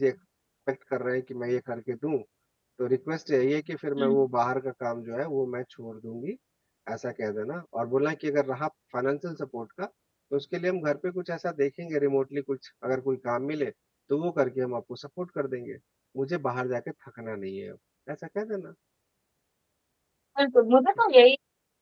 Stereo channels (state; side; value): identical; both; correlation 1.00